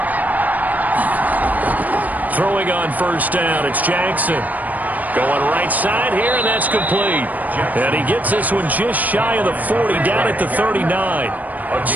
Throwing on first down, it's Jackson. Going right side here, and that's complete. And he gets this one just shy of the 40, down at the 39.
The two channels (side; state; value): left; late; 0.079 ms